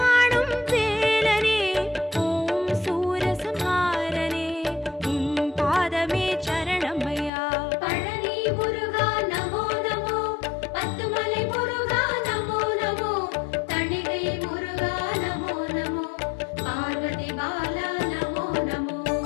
வேலனே, ஓம் சூரசம்ஹாரனே, உன் பாதமே சரணமையா. பழனி முருகா நமோ நமோ, பத்துமலை முருகா நமோ நமோ, தணிகை முருகா நமோ நமோ, பார்வதி பாலா நமோ நமோ.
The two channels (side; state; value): right; drops out; at 7.3 s